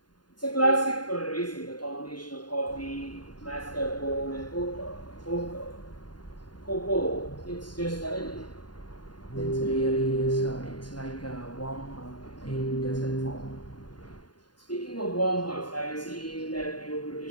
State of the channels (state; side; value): late; right; 0.70 ms